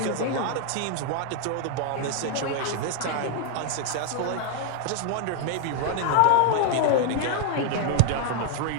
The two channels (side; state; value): both; different; correlation 0.00